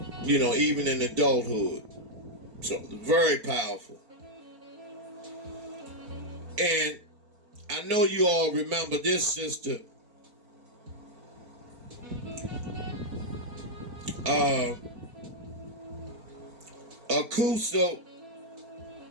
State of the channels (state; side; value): late; left; 4.5 ms